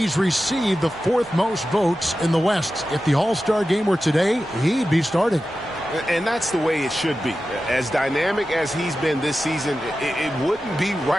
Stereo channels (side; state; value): both; normal; correlation 0.93